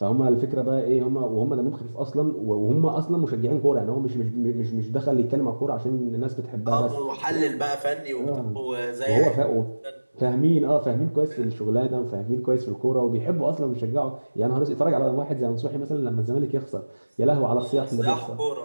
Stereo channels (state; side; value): inverted; both; correlation -1.00